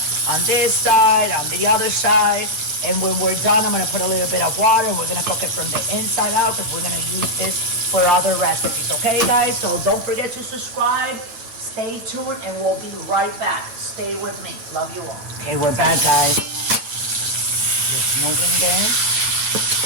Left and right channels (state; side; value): late; left; 8.9 ms